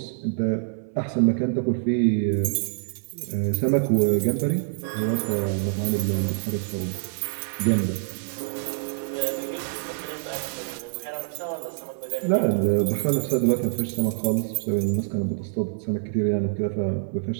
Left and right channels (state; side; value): silent; left; 61 dB below the other